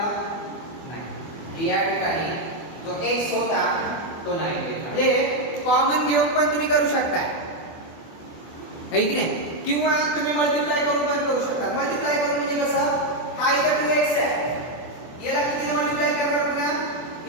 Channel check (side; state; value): right; late; 24 ms